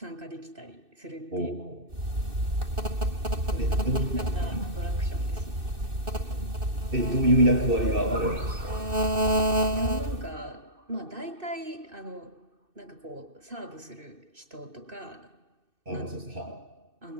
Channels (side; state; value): left; late; 2.6 ms